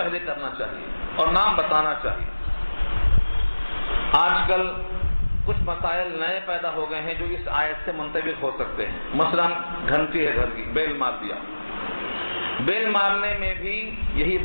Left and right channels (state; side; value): inverted; both; correlation -1.00